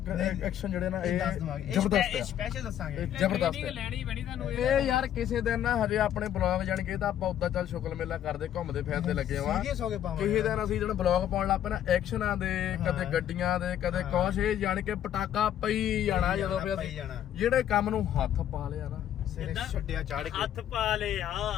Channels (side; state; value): right; quieter; 10.8 dB